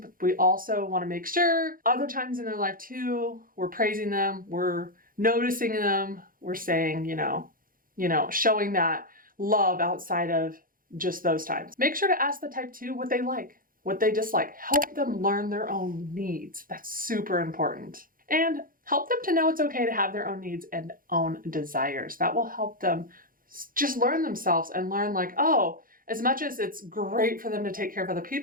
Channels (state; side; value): late; left; 0.41 ms